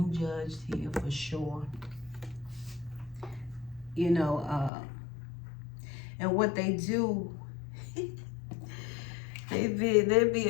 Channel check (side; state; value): right; drops out; at 4.7 s